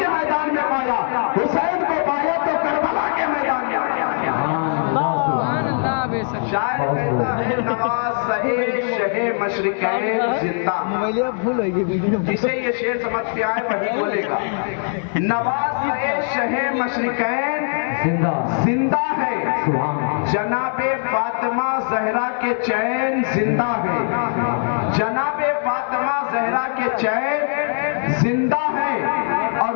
میدان میں پایا، حسین کو پایا تو کربلا کے میدان میں پایا. شاعر کہتا ہے نواز شہ مشرقین زندہ. جسے یہ شعر سمجھ پہ آئے وہی بولے گا. نواز شہ مشرقین زندہ ہے، جناب فاطمہ زہرا کے چین زندہ ہے. جناب فاطمہ زہرا کے چین زندہ ہے. اور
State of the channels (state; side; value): silent; right; digital silence